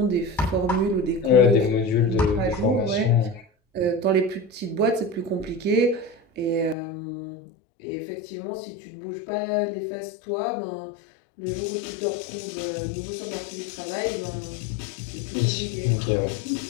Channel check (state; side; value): drops out; right; at 6.8 s